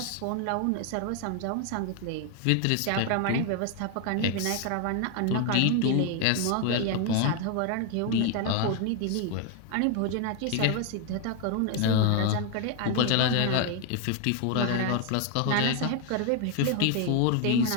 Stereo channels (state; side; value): different; both; correlation 0.00